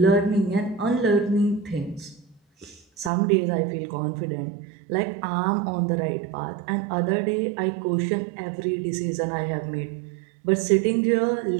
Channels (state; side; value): drops out; left; at 3.1 s